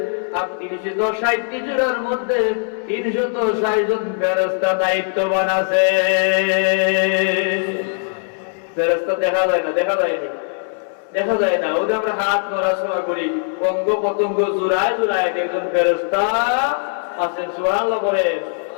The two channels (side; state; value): right; silent; 66 dB below the other